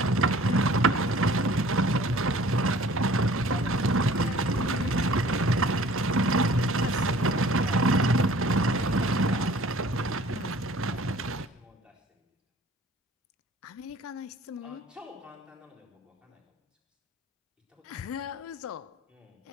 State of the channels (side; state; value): both; normal; correlation 0.50